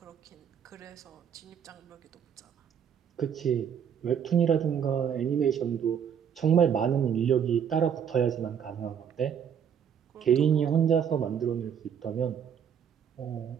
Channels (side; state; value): left; quieter; 8.1 dB